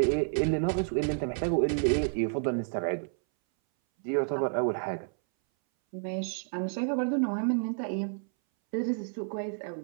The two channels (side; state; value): left; silent; 58 dB below the other